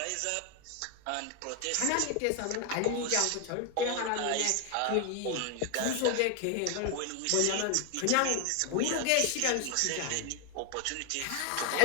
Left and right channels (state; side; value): different; both; correlation 0.00